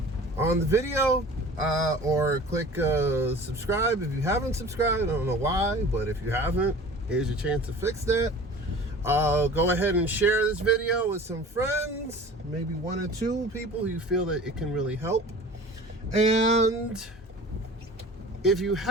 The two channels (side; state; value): both; normal; correlation 0.42